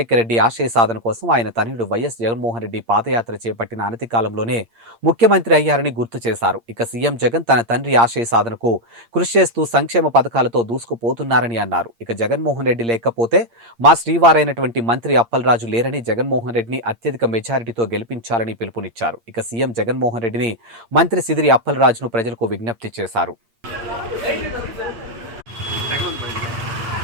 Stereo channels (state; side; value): late; left; 8.7 ms